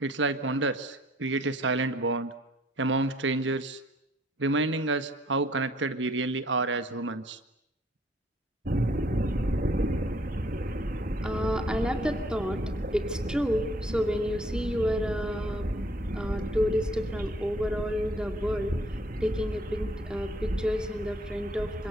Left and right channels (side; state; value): both; normal; correlation 0.61